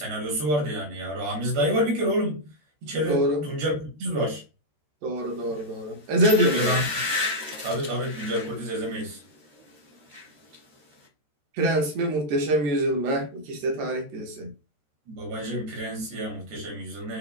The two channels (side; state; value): left; late; 13 ms